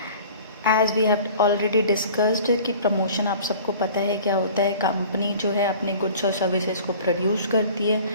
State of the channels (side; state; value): both; inverted; correlation -0.45